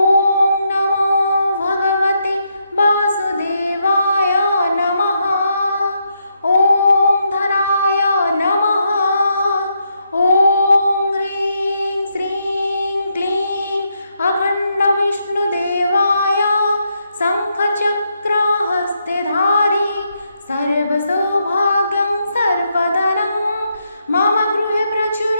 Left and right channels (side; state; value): both; inverted; correlation -0.79